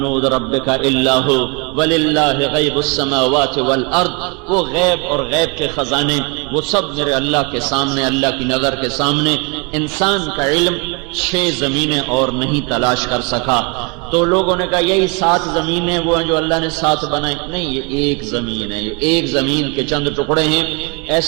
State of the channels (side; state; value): left; quieter; 31.1 dB